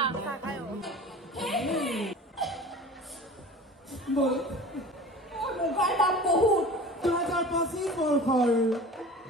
মোবাইল দাম বহুত 2025 বৰ্ষৰ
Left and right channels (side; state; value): both; normal; correlation 0.38